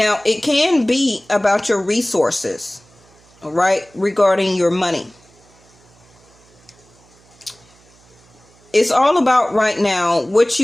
it can be about your resources, all right, regarding your money. It's all about right now what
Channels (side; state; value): right; noise; hum, 30 dB below the sound